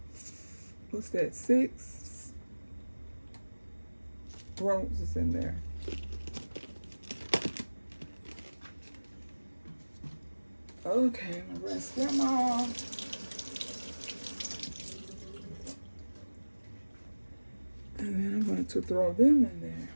what's that, 6 roses in there. Okay, I'm gonna rinse them off. And then I'm going to throw them in there.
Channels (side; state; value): both; inverted; correlation -1.00